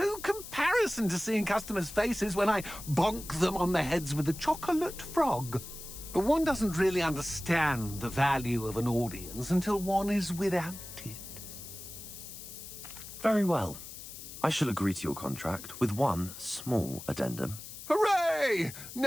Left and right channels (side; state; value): left; noise; hiss, 12 dB below the sound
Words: comparison to seeing customers' faces when I bonk them on the heads with a chocolate frog. One doesn't really understand the value of an audience until one is without it. Very well. I shall agree to your contract with one small addendum. Hooray!